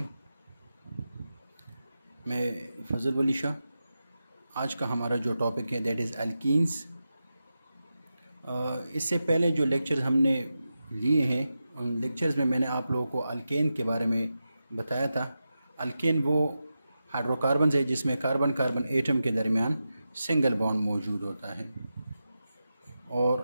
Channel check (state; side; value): inverted; both; correlation -0.91